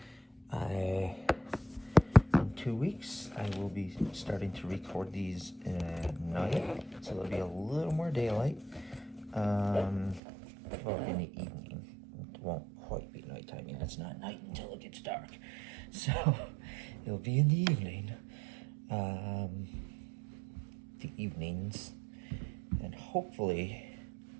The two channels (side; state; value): left; drops out; at 10.2 s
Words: in 2 weeks I will be starting to record these at night, so there'll be a little more daylight. Well, in the evening. It won't quite be nighttime yet. It's not night until it gets dark. So it'll be in the evening. The evenings. And hopefully